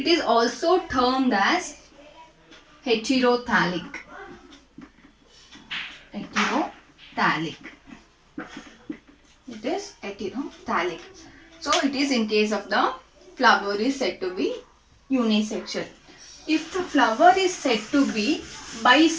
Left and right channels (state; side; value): identical; both; correlation 1.00